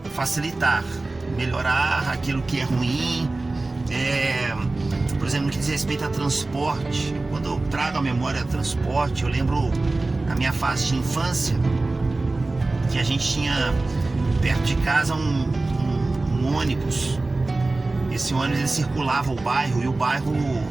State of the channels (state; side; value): quieter; left; 3.2 dB